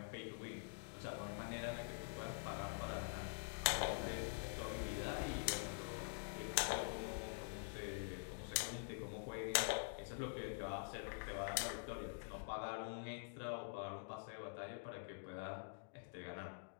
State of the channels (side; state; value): right; silent; digital silence